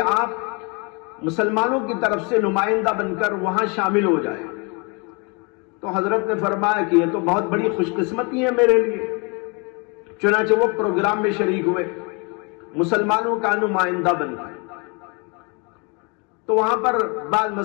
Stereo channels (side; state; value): right; quieter; 32.0 dB